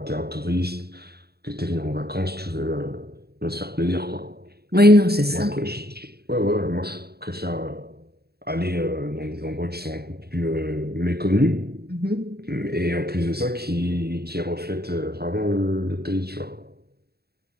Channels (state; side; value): late; left; 0.46 ms